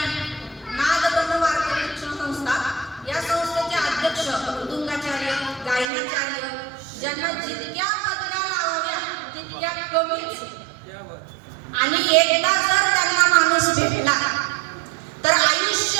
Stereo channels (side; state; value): left; drops out; at 5.9 s